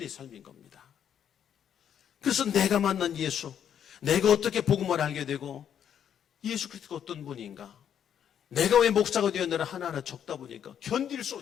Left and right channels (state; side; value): quieter; right; 9.0 dB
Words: 삶인 겁니다. 그래서 내가 만난 예수, 내가 어떻게 복음을 알게 되고 예수 그리스도가 어떤 분인가, 내가 왜 목사가 되었느라 하나하나 적다 보니까